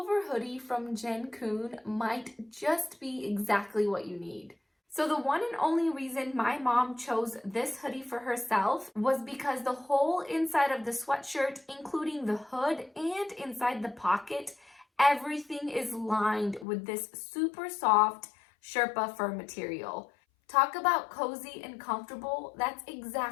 hoodie from Jenkoon might just be exactly what you need. So the one and only reason my mom chose this hoodie for herself was because the whole inside of the sweatshirt, including the hood and inside the pocket, everything is lined with this super soft Sherpa fur material. Talk about cozy and comfortable. That's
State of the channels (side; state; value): right; drops out; at 16.7 s